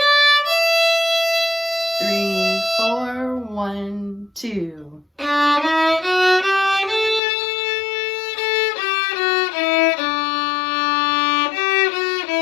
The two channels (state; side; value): drops out; right; at 7.2 s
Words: 3, 4, 1, 2.